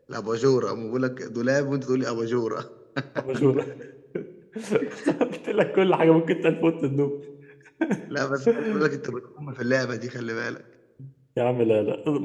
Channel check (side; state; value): both; identical; correlation 1.00